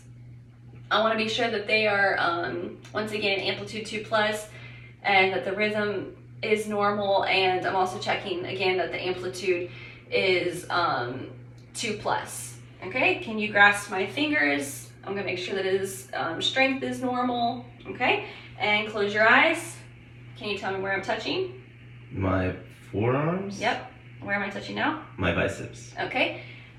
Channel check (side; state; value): both; identical; correlation 1.00